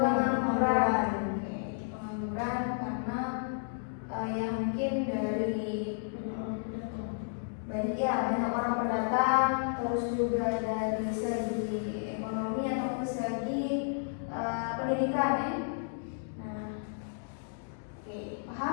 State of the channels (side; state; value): right; silent; digital silence